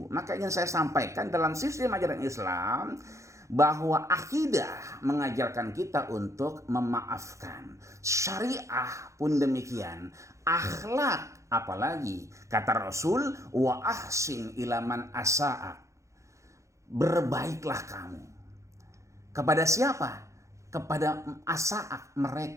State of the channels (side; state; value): left; late; 0.15 ms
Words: maka yang saya sampaikan dalam sistem ajaran Islam bahwa akidah mengajarkan kita untuk memaafkan. Syariah pun demikian. Akhlak apalagi kata Rasul wa ahsin ilaman asa'a. berbaiklah kamu. Kepada siapa? Kepada asaak